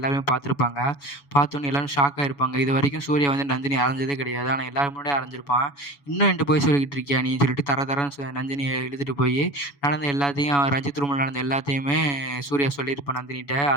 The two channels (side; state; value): right; late; 7.1 ms